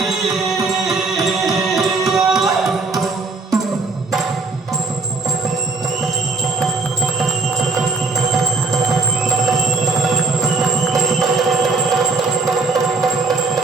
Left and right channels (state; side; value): quieter; left; 3.9 dB